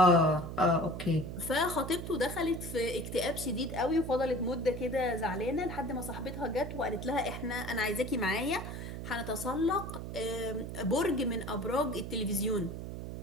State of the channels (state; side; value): noise; right; hum, 7 dB below the sound